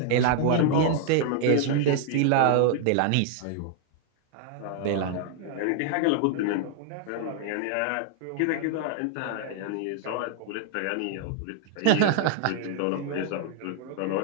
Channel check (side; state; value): both; different; correlation 0.00